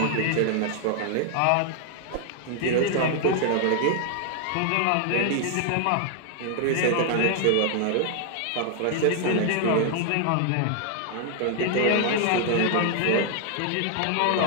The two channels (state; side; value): different; both; correlation 0.00